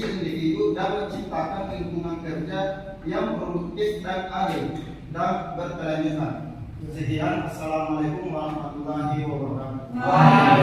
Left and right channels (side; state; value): both; identical; correlation 1.00